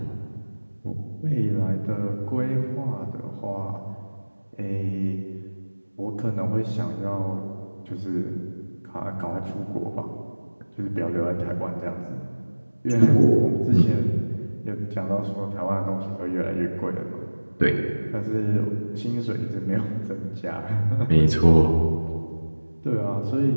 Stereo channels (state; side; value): inverted; both; correlation -1.00